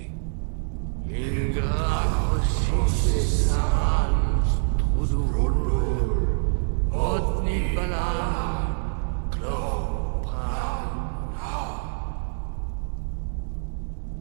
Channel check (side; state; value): left; silent; digital silence